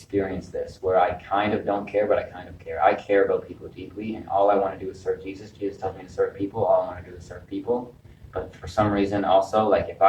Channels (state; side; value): identical; both; correlation 1.00